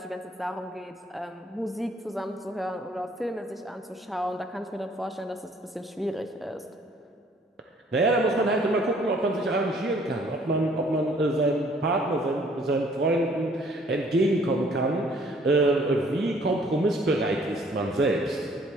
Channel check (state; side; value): normal; both; correlation 0.60